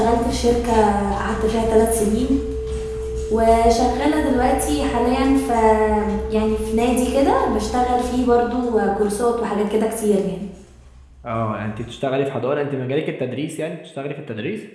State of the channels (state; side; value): identical; both; correlation 1.00